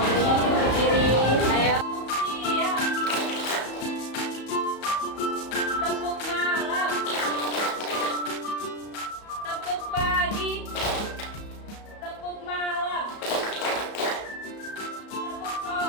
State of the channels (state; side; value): late; right; 34 ms